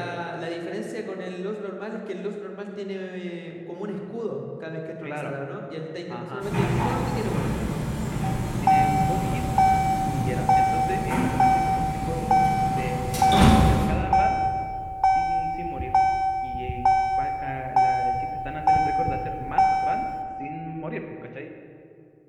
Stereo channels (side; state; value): both; identical; correlation 1.00